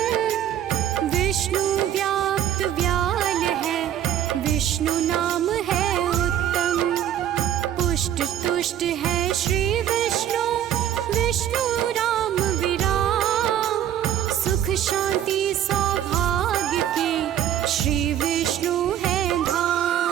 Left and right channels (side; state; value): left; quieter; 10.6 dB